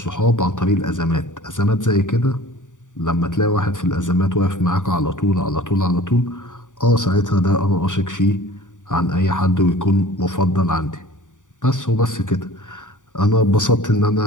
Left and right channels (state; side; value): late; right; 0.86 ms